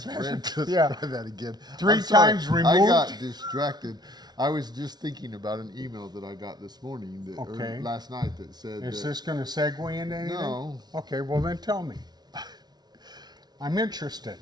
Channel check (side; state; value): left; late; 0.19 ms